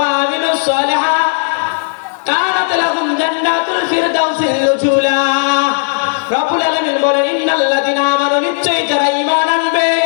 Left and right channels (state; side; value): silent; right; 60 dB below the other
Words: আমিলুস সালিহাত কানাত লাহুম জান্নাতুল ফিরদাউসিল নুজুলা। রব্বুল আলামিন বলেন ইন্নাল্লাযীনা আমানু নিশ্চয়ই যারা ঈমান আনবে